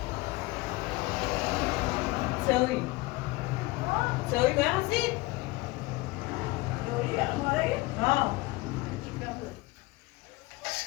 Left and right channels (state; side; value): quieter; right; 21.8 dB